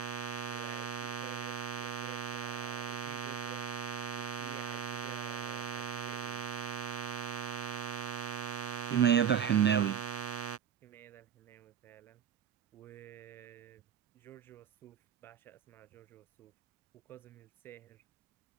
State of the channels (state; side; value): quieter; left; 8.0 dB